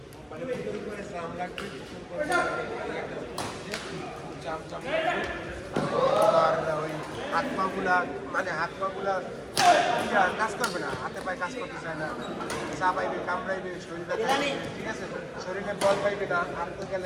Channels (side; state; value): both; identical; correlation 1.00